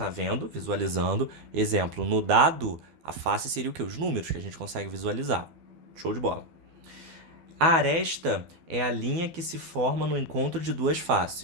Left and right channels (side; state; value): left; late; 12 ms